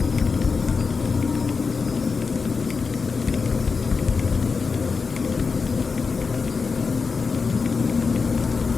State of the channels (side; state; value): right; quieter; 4.8 dB